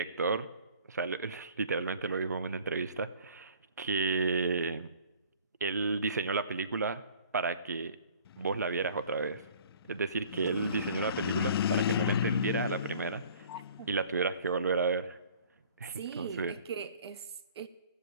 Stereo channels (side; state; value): both; inverted; correlation -0.50